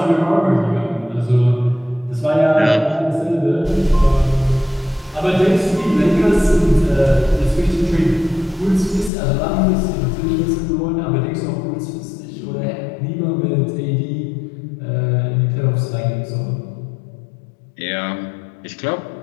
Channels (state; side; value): drops out; right; at 9.1 s